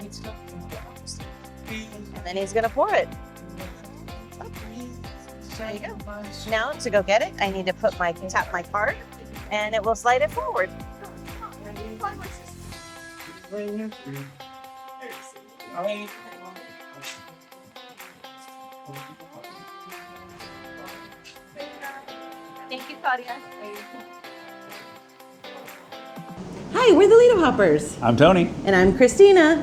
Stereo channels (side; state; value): both; identical; correlation 1.00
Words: And then he's gonna pour it. There you go. Now to go get it, I need to tap my card, and it will slide it forward. Thank you, Claudia. Hi, we're the Lido Hoppers. I'm Tony. And I'm